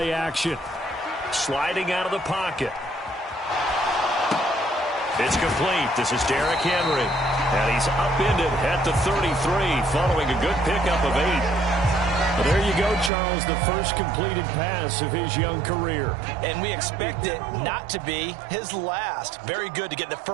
action. Sliding out of the pocket. It's complete. This is Derrick Henry. And he's upended at the 33 following a good pickup of 8. Well, there you go, Charles, the first completed pass of his young career. And we expect it not to be his last. Very good to get the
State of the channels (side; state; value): left; drops out; at 13.1 s